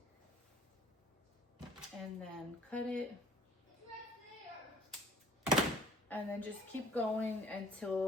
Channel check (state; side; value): normal; both; correlation 0.52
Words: And then cut it. And then just keep going